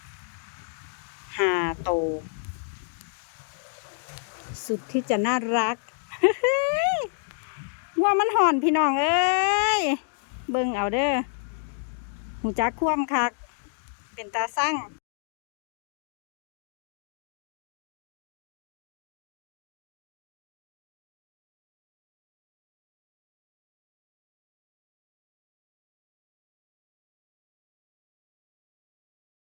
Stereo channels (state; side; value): silent; right; digital silence